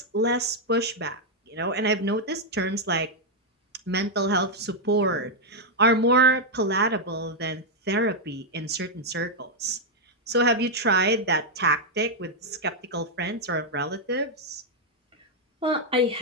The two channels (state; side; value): normal; both; correlation -0.01